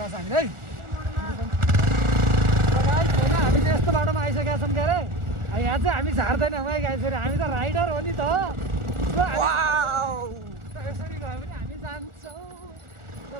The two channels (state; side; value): late; left; 1.4 ms